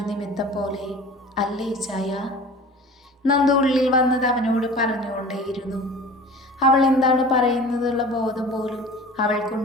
നിമിത്തം പോലെ അല്ലേ ഇച്ചായ? നന്ദു ഉള്ളിൽ വന്നത് അവനോട് പറഞ്ഞുകൊണ്ടേയിരുന്നു. അവൾ എന്താണ് പറയുന്നതെന്നുള്ള ബോധം പോലും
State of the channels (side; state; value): both; normal; correlation 0.41